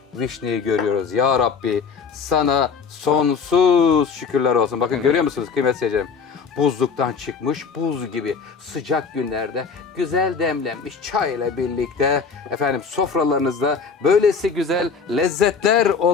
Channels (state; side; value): quieter; right; 5.5 dB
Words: vişneyi görüyoruz. Ya Rabbi, sana sonsuz şükürler olsun. Bakın, görüyor musunuz kıymetli seyircilerim? Buzluktan çıkmış buz gibi sıcak günlerde güzel demlenmiş çay ile birlikte efendim sofralarınızda böylesi güzel lezzetler